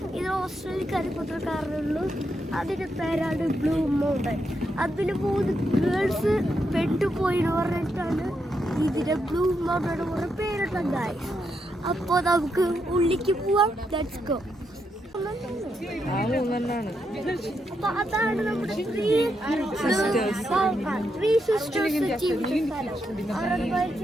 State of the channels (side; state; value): both; normal; correlation 0.82